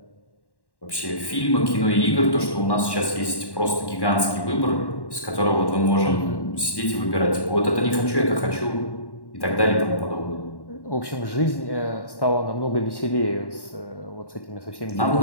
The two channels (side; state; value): right; late; 1.1 ms